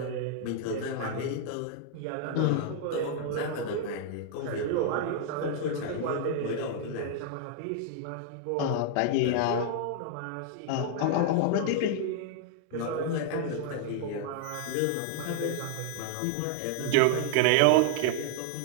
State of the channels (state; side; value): different; both; correlation 0.00